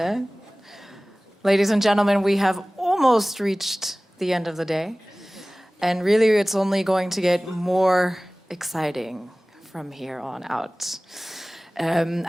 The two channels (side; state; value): both; normal; correlation 0.98